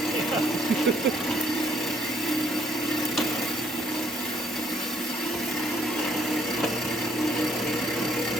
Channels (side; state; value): both; normal; correlation 0.67